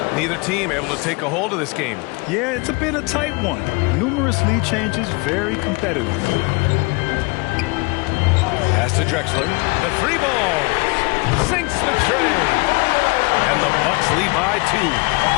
Neither team able to take a hold of this game. Yeah, it's been a tight one. Numerous lead changes, very competitive. Pass to Drexler. The 3 ball. Sinks the tray. And the Bucks lead by 2.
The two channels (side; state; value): right; quieter; 28.0 dB